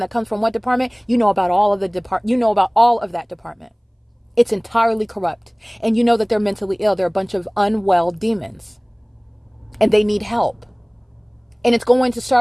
that comes from what department. You know about all of that department. It's entirely corrupt. And you know that they're mentally ill. They're a bunch of unwell demons. And they need help. And it's going to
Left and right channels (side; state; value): both; identical; correlation 1.00